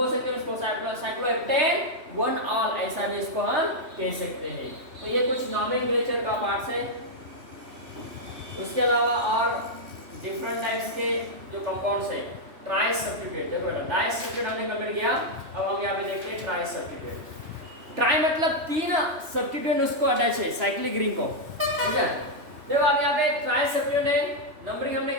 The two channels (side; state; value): left; late; 3.1 ms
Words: सकते हैं इसको. साइक्लोहेप्टेन वन ऑल ऐसा भी इसको हम कह सकते हैं. तो ये कुछ नॉमेनक्लेचर का पार्ट्स है. उसके अलावा और डिफरेंट टाइप्स के जो कंपाउंड्स है. ट्राई सब्स्टिट्यूट देखो बेटा, डाई सब्स्टिट्यूट हमने कंप्लीट किया. अब हम यहाँ पे देखते हैं ट्राई सब्स्टिट्यूट. ट्राई मतलब 3 सब्स्टिट्यूट उसको अटैच है साइक्लिक रिंग को, ठीक है. देखो आप यहाँ पे ट्राई सब्स्टिट्यूट है. नंबरिंग हमने